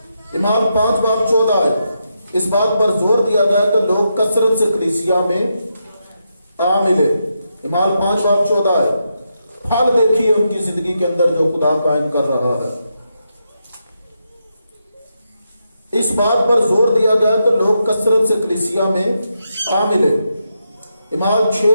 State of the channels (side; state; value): both; inverted; correlation -0.83